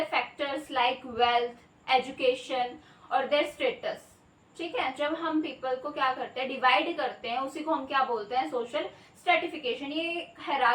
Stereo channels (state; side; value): identical; both; correlation 1.00